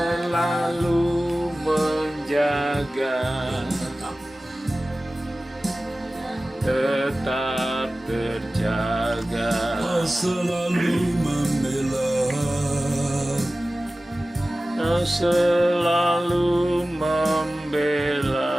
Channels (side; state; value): both; normal; correlation 0.96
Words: lalu menjaga, tetap terjaga. Kau selalu membela, Kau selalu membela